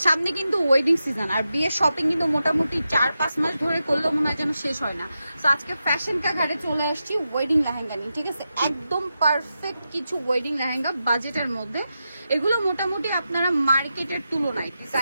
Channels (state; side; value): inverted; both; correlation -0.89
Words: সামনে কিন্তু ওয়েডিং সিজন, আর বিয়ের শপিং কিন্তু মোটামুটি 4-5 মাস ধরে করলেও মনে হয় যেন শেষ হয় না। তো আজকে ফ্যাশন কা ঘাটে চলে আসছি ওয়েডিং লেহেঙ্গা নিয়ে, ঠিক আছে? একদম পারফেক্ট কিছু ওয়েডিং লেহেঙ্গা বাজেটের মধ্যে। এগুলো মোটামুটি আপনারা মার্কেটের তুলনায়